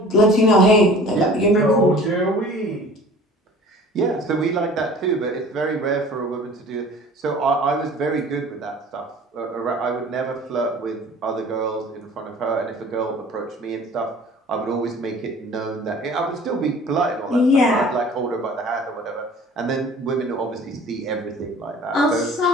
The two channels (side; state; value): both; normal; correlation 0.46